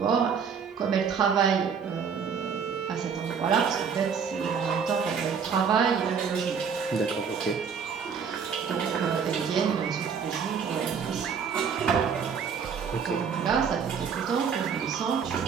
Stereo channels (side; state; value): left; quieter; 6.6 dB